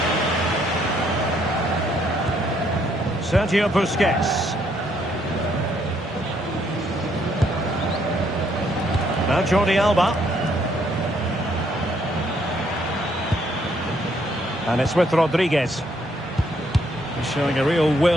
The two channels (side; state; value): both; normal; correlation 0.70